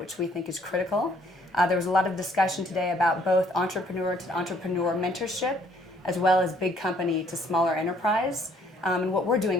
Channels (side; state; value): both; normal; correlation 0.63